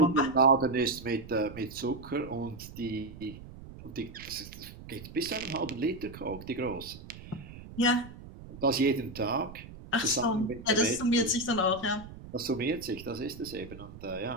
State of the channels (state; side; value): noise; right; rumble, 15 dB below the sound